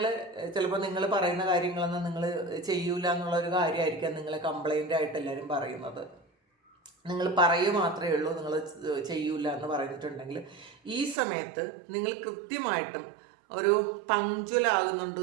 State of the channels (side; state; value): left; drops out; at 11.2 s